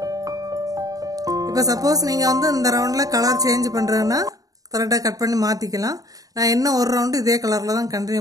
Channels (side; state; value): left; late; 0.17 ms